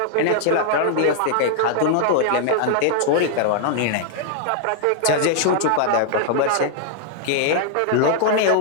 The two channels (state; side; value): different; both; correlation -0.01